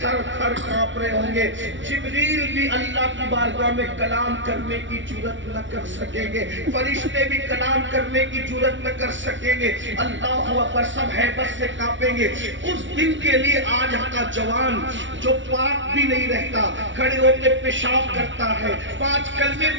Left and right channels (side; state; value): left; late; 0.55 ms